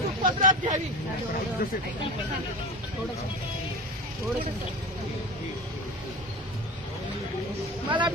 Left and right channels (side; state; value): both; normal; correlation 0.30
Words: पदरात घ्यावी. मला